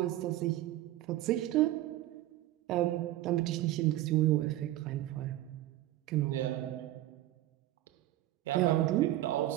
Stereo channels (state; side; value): quieter; left; 15.0 dB